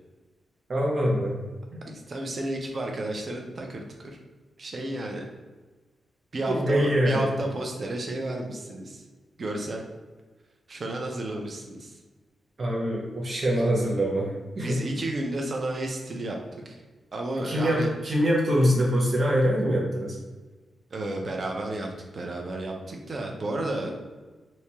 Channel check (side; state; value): both; normal; correlation 0.87